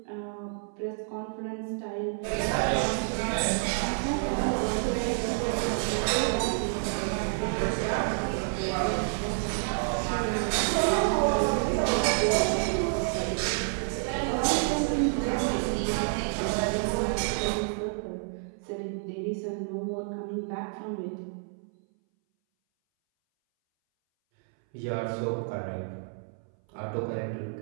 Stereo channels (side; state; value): left; silent; 59 dB below the other